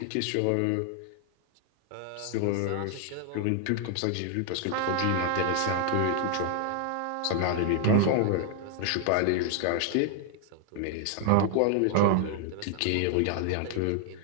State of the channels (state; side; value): different; both; correlation 0.00